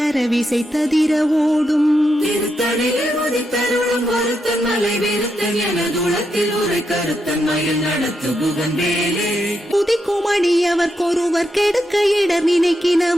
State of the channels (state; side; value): normal; both; correlation 0.83